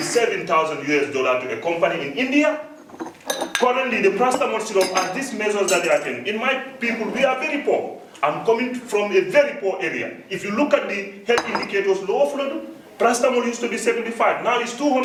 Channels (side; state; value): both; identical; correlation 1.00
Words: US to a company in India. Currently, the paracetamol syrup and these measures that they are taking, in my people, we are very poor. I'm coming from a very poor area. If you look at the health indicators, lower flood, paracetamol used to be 75, now it's